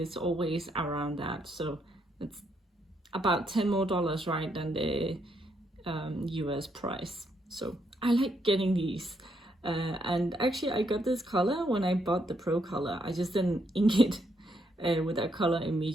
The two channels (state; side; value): normal; both; correlation 0.75